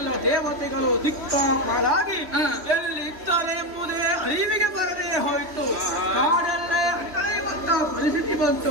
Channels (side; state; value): left; late; 3.2 ms